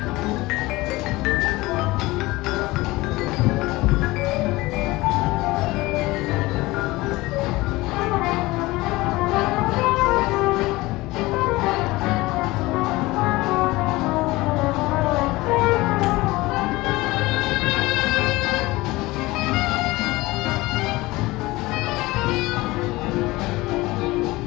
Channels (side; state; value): right; quieter; 20.4 dB